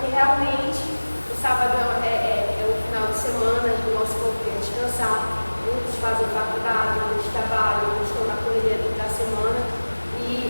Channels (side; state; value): both; inverted; correlation -1.00